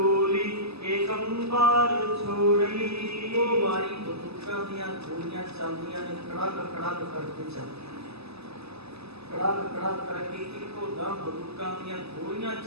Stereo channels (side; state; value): left; late; 0.79 ms